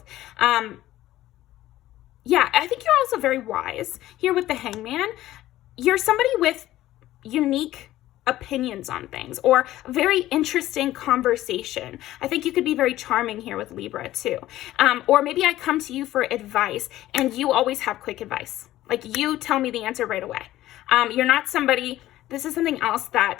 Yeah, I think you're also very wise here with the Hangman. You're somebody with unique opinions on things, or a very interesting conversation. I think you could be very charming here with Libra too. Or maybe I come to you for advice and you always have quick advice. Like, you tell me the answer right away. You're not somebody, this is something else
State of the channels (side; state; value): right; quieter; 14.8 dB